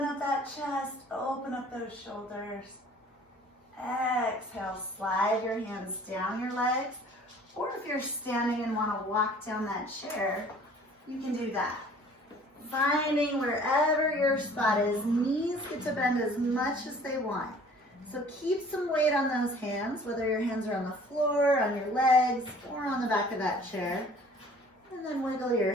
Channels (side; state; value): both; normal; correlation 0.52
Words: up that chest, open up those shoulders. Exhale, slide your hands down your legs. Or if you're standing and want to walk down that chair, you can do that. Finding wherever your spot is, knees get to bend as much as they want. So keep some weight on those hands, whether your hands are on the floor, on your legs, or on the back of that chair. And then wiggle your